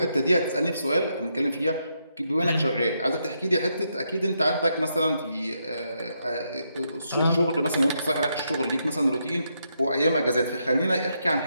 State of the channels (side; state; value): both; inverted; correlation -0.80